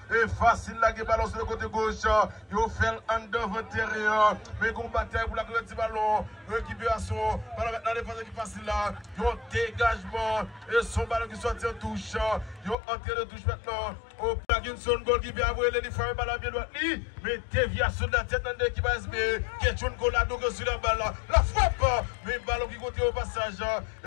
Et facile là, qui ballon sur le côté gauche. Il fait un devant intérieur. Mais qu'on bataille pour la petit ballon. Récupération. Ballon maintenant, défense qui facile là. Il y a un dégagement. Et son ballon qui sortit en touche. Il y a un entrée de touche maintenant. Au Parkinson, goal qui vient avoir les femmes ballon bien droit. Mais déviation de la tête dans l'équipe ASB. Question Colado sur la balle. La frappe. Mais ballon qui continue au passage.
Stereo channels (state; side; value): drops out; right; at 12.8 s